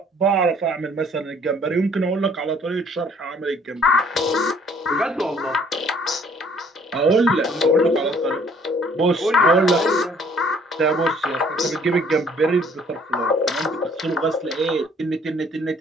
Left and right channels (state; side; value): normal; both; correlation 0.59